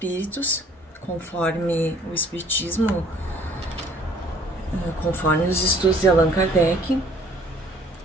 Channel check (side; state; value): both; normal; correlation 0.57